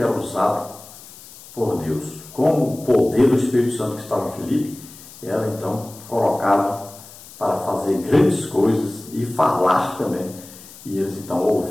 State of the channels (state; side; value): noise; left; hiss, 19 dB below the sound